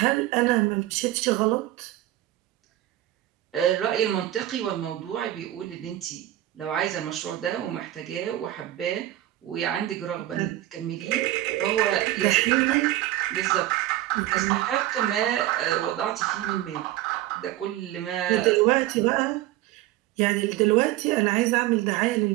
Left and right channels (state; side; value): quieter; left; 14.8 dB